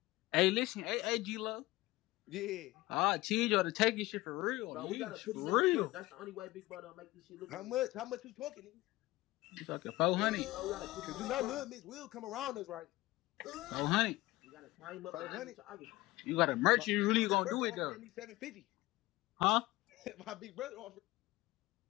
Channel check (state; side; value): quieter; right; 19.1 dB